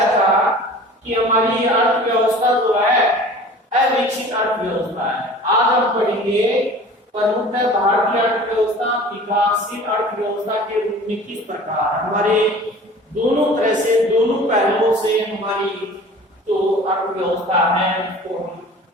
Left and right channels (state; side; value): normal; both; correlation 0.43